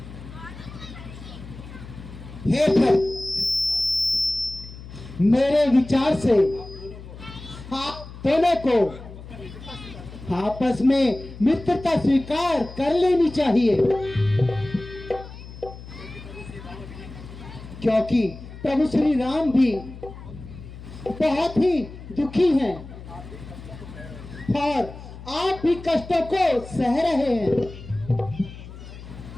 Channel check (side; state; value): left; noise; hum, 14 dB below the sound